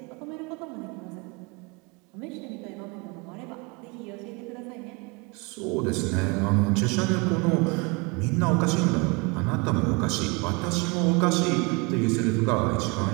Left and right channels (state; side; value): quieter; left; 28.6 dB